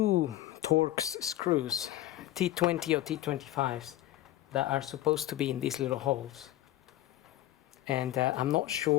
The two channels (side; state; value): right; quieter; 14.6 dB